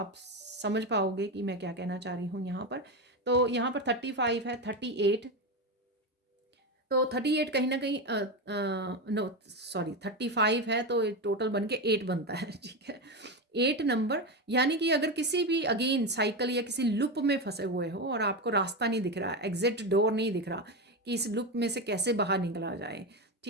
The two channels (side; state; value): both; normal; correlation 0.15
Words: समझ पाओगे कि मैं क्या कहना चाह रही हूँ यहाँ पर। तो यहाँ पर 35 है, 38, तो 38 कहीं ना कहीं नो सॉरी 35 है, तो टोटल बन के 8 बनता है। ठीक है, 8 नंबर, यानी कि अगर किसी भी अगेन साइकिल या किसी लूप में फंसे हुए हो और आपको रास्ता नहीं दिख रहा, एग्जिट डोर नहीं दिख रहा कि इस लूप में से कैसे बाहर निकला जाए,